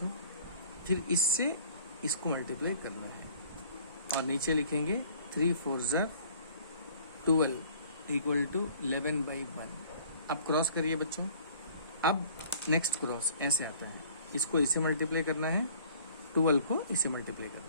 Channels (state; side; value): inverted; both; correlation -0.53